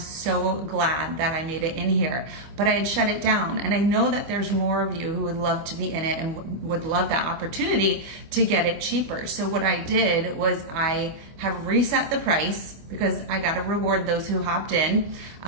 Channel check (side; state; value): left; late; 25 ms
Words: glad that I made it in here, but I had shut it down. And I know that there's more of you who would love to be in it and would love that opportunity to get it cheaper. So what I did was I have reset the price because I got to reward those who hopped in